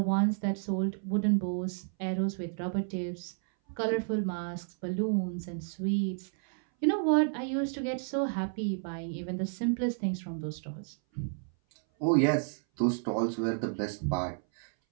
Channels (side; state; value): left; silent; 57 dB below the other